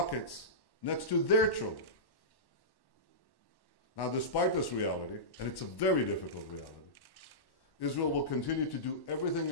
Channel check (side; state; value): right; late; 1.1 ms